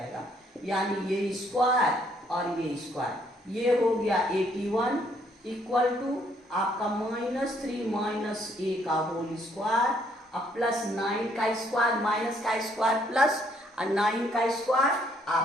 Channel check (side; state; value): both; normal; correlation 0.68